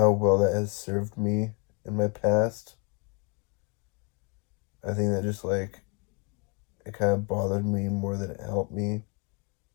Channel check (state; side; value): quieter; right; 32.1 dB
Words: well that has served me in my past. I think that just like it kind of bothered me more than it helped me.